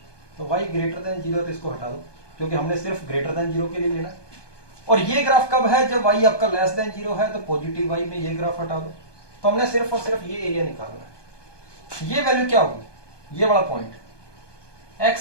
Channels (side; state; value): right; late; 1.2 ms